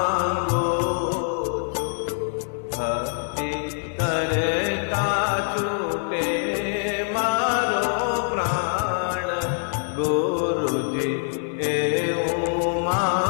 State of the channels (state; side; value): silent; right; 62 dB below the other